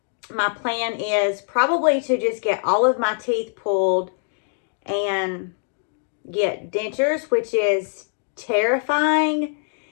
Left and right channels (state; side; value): silent; right; digital silence